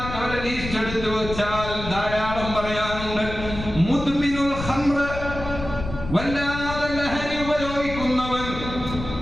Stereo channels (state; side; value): noise; left; rumble, 9 dB below the sound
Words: ലിസ്റ്റ് എടുത്തു വെച്ചാൽ ധാരാളം പറയാനുണ്ട്. മുദ്മിനുൽ ഖംറ, വല്ലാതെ ലഹരി ഉപയോഗിക്കുന്നവൻ,